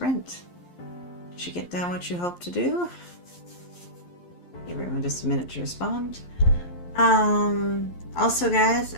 Did you get done what you hoped to do? Give everyone just a minute to respond. Also, guys,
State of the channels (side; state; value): right; late; 11 ms